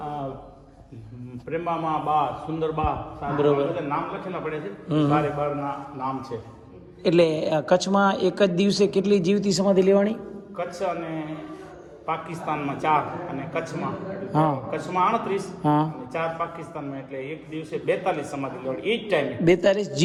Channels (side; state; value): both; identical; correlation 1.00